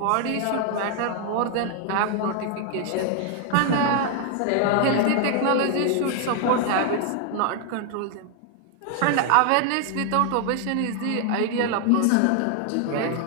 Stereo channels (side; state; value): both; different; correlation 0.00